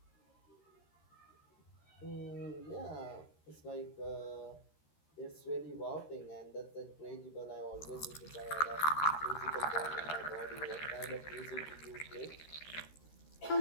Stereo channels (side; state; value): right; late; 13 ms